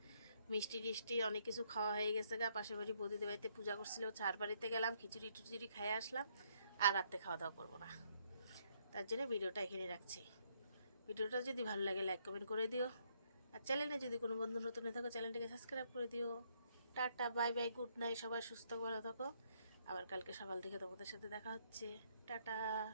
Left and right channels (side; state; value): both; inverted; correlation -0.71